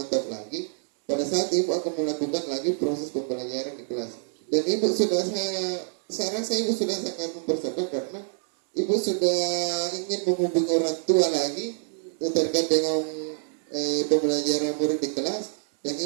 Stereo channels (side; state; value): left; silent; 60 dB below the other